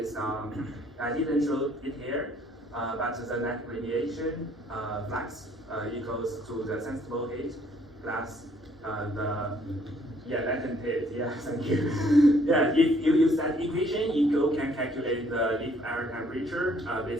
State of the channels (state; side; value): normal; both; correlation 0.64